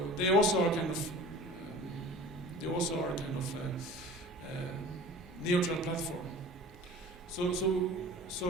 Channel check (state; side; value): normal; both; correlation 0.42